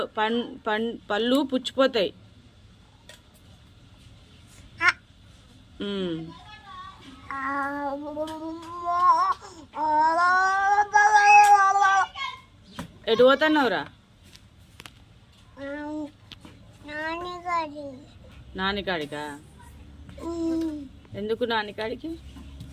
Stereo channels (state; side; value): identical; both; correlation 1.00